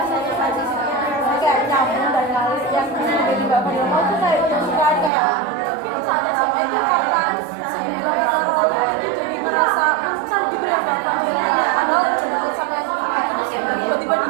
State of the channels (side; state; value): left; drops out; at 5.1 s